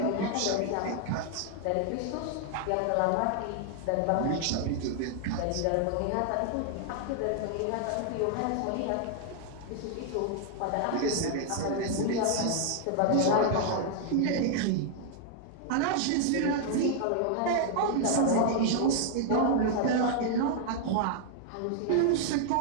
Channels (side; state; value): both; different; correlation 0.00